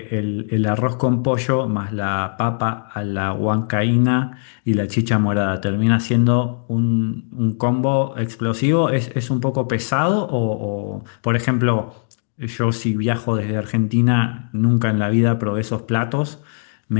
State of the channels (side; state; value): right; silent; digital silence